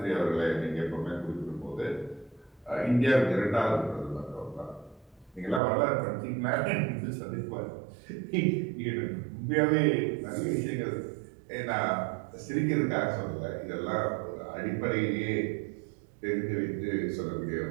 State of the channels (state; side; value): drops out; left; at 5.6 s